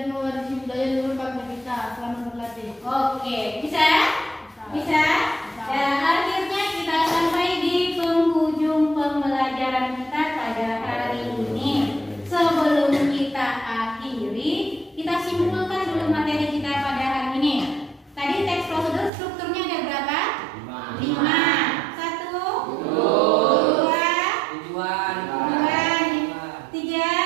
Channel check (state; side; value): drops out; left; at 19.1 s